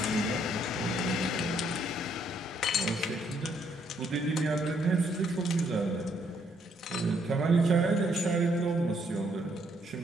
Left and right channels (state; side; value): normal; both; correlation 0.71